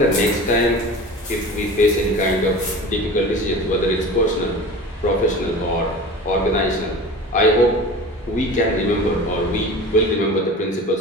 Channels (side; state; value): both; normal; correlation 0.36